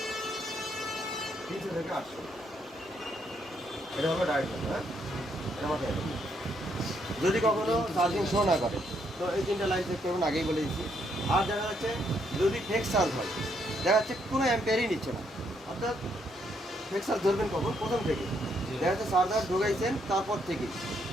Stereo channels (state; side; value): normal; both; correlation 0.74